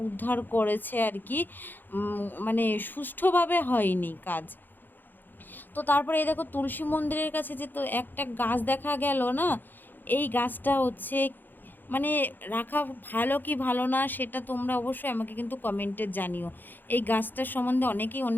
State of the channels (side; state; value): right; late; 0.090 ms